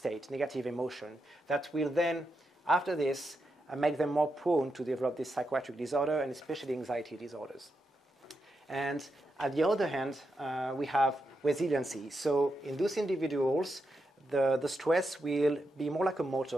negative emotion, that will then, after this, make them more prone to develop this psychiatric disorder and especially anxiety disorders. And at the other hand, we have resiliency. So in those individuals, the stress will be more like a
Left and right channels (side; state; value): both; normal; correlation 0.85